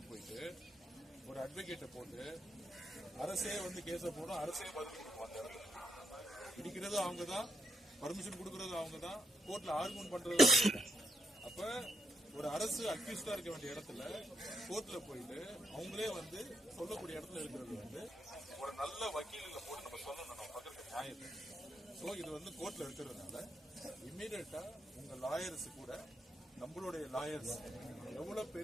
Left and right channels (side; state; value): both; normal; correlation 0.79